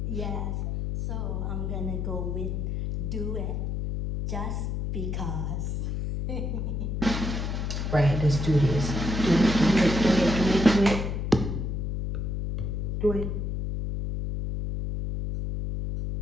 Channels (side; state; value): left; noise; hum, 2 dB below the sound